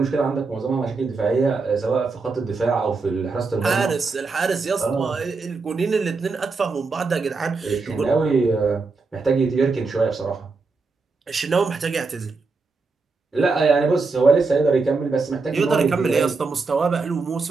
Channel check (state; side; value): quieter; left; 4.2 dB